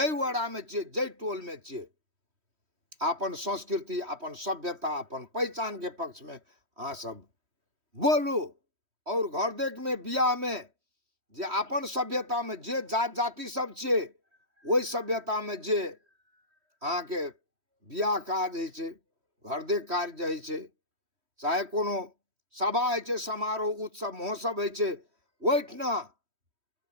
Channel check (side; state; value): left; late; 3.1 ms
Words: वाड़ा में छिए, जय टोल में छिए, अपन संस्कृति, अपन सभ्यता, अपन पहचान के पक्ष में अहाँ सब बोलू। और घर देख में बियाह में जे अपन सभ्यता में जे जात जाति सब छे, वही सभ्यता में जे अहाँ के बियाह काज है छे, घर देख कार्य है छे, चाहे कोनो सभा है छे, समारोह, उत्सव, महोत्सव है छे, वहीठना